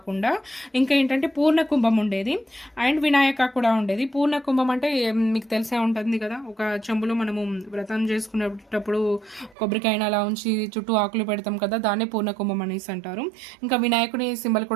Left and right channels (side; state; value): left; drops out; at 9.6 s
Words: ఇంకా ఏంటంటే పూర్ణ కుంభం ఉండేది అండ్ వినాయక కూడా ఉండేది. పూర్ణ కుంభం అంటే మీకు తెలిసే ఉంటుంది కదా, ఒక చెంబులో మనము వ్రతం చేసుకునేటప్పుడు కొబ్బరికాయన అలా ఉంచి చుట్టూ ఆకులు పెడతాం కదా, దాన్నే పూర్ణ కుంభం అనేసి అంటారు. ఇంకా వినాయకుని సింబల్